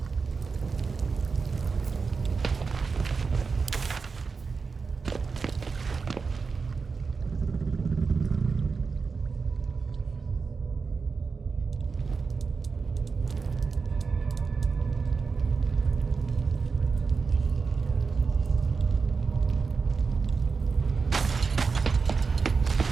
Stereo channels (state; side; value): quieter; left; 4.8 dB